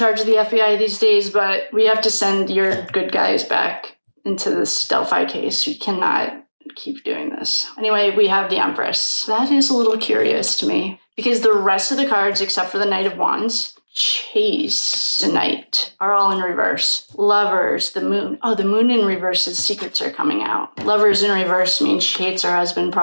of the FBI these days, but we have to send your good guys back into this Delphi case. We cannot keep doing this. Anyway, we have the Empress. That is a little curious to me because the rest of the cards, except for the Knight of Wands, Chase, the Knight, are all in reverse. Lovers, the Moon. Oh, the Moon in reverse, his secrets are coming out. Lovers in reverse means she hates her husband,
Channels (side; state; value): both; inverted; correlation -1.00